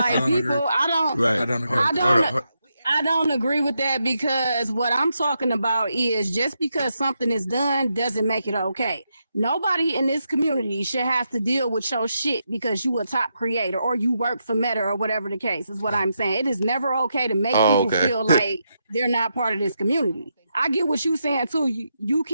people, I don't agree with that, because what I'm talking about is just because something is done doesn't make it okay. Nobody in this community should have to deal with your shit because you a top creator or you work for Meta or whatever the case is. What I'm saying. It is never okay to make people feel like they're not part of this community. I get what you're saying too. You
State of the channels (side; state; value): both; inverted; correlation -0.83